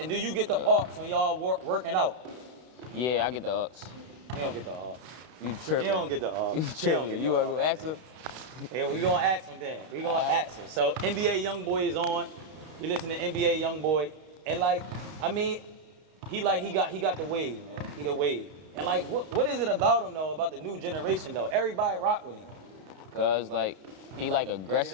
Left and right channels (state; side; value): late; left; 32 ms